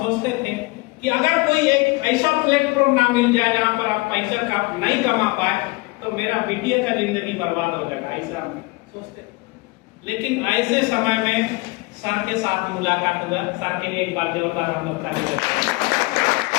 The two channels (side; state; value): right; quieter; 24.3 dB